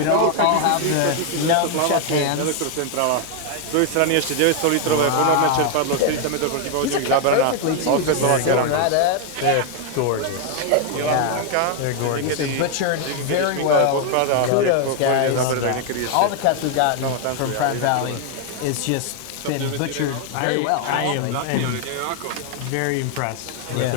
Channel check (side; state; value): both; different; correlation 0.00